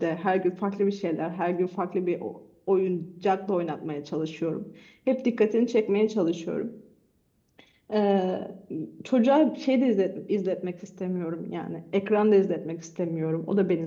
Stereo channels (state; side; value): identical; both; correlation 1.00